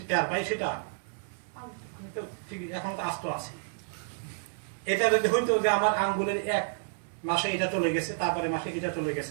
টের পাই সেটা? আমি তো ঠিক এখন তো আস্ত আছি। এটা যদি হইতো যে আমার আঙ্গুলের এক মাসে এটা চলে গেছে, তারপরে মাসে এটা চলে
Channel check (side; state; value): left; silent; 58 dB below the other